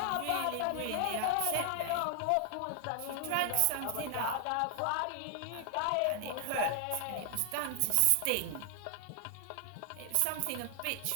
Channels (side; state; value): both; different; correlation 0.00